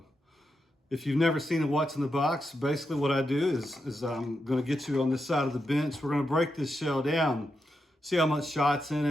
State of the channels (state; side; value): normal; both; correlation 0.86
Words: if you've never seen a what's in the box, basically what I do is I'm gonna get you on this side of the bench. We're gonna break this shell down, see how much shot's in